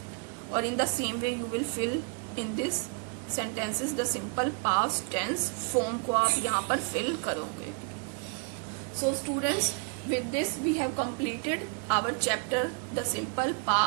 और in the same way you will fill in this sentences the simple past tense form को आप यहाँ पर फिल करोगे. So students, with this we have completed our chapter the simple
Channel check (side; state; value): left; quieter; 37.6 dB